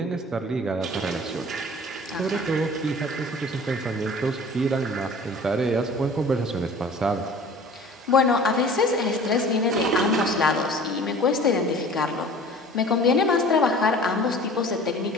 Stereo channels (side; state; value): both; normal; correlation 0.45